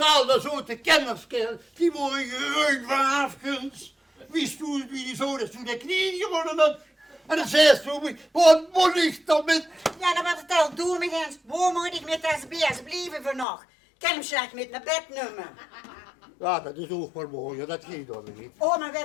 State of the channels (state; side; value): drops out; right; at 13.5 s